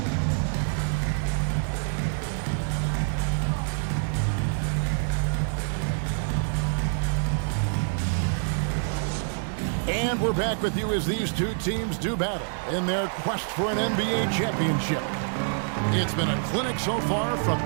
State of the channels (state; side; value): silent; left; digital silence